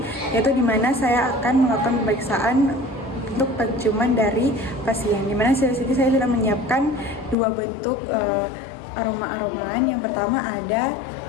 yaitu di mana saya akan melakukan pemeriksaan untuk penciuman dari pasien. Di mana saya sudah menyiapkan dua bentuk aroma-aromaan. Yang pertama ada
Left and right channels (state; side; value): drops out; right; at 7.4 s